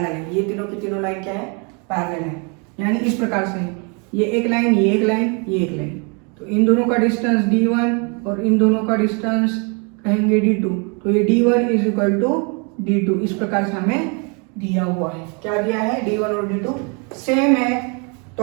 है। ये तीनों की तीनों लाइन क्या है, पैरेलल है। यानी इस प्रकार से ये एक लाइन, ये एक लाइन, ये एक लाइन, तो इन दोनों का डिस्टेंस d1 और इन दोनों का डिस्टेंस कहेंगे d2। तो ये d1 is equal to d2, इस प्रकार से हमें दिया हुआ है। क्या दिया है, d1 और d2 सेम है। तो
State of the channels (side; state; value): left; quieter; 34.6 dB